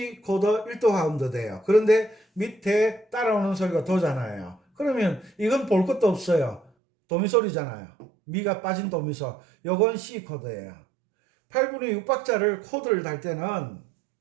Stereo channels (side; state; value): left; drops out; at 6.7 s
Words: 코드 1도 화음도 돼요. 그런데 밑에 따라오는 소리가 도잖아요. 그러면 이건 볼 것도 없어요. 도미솔이잖아요. 미가 빠진 도미솔. 요건 C 코드예요. 8분의 6박자를 코드를 달 때는